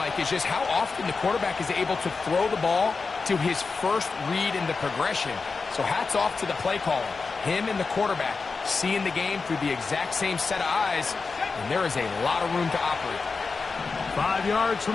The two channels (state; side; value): quieter; right; 4.5 dB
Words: is just how often the quarterback is able to throw the ball to his first read in the progression. So hats off to the play caller. Him and the quarterback seeing the game through the exact same set of eyes, and there is a lot of room to operate. 5 yards